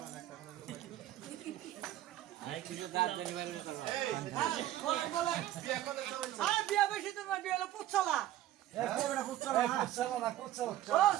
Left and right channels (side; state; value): left; quieter; 13.6 dB